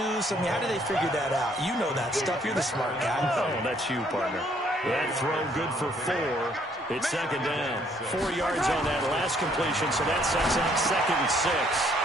I mean, how do they figure that out? You know that stuff. You're the smart guy. Oh, that's you, partner. That throw good for 4. It's 2nd down. 4 yards on that last completion, so that sets up 2nd and 6.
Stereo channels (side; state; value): both; normal; correlation 0.65